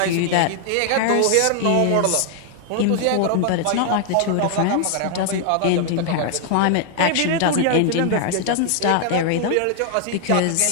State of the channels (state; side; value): different; both; correlation 0.00